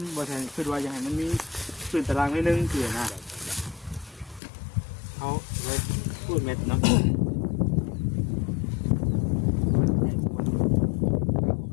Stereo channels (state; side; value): drops out; right; at 4.4 s